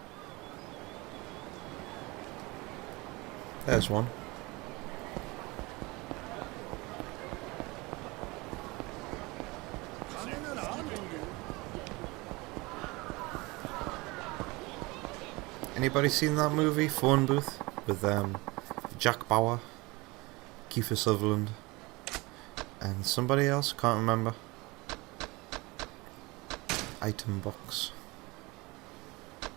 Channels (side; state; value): left; quieter; 24.0 dB